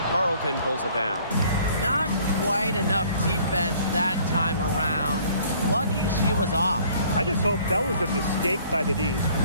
Carlton pulls it down. Not quite enough defense that time around. Lucky she was off. I just hope that was a mistake by the D's,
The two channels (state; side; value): inverted; both; correlation -0.56